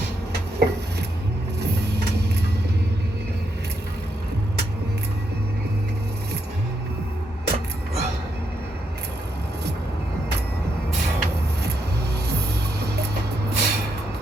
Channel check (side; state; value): both; normal; correlation 0.80